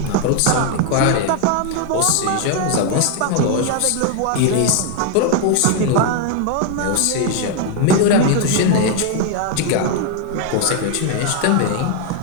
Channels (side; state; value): both; different; correlation 0.00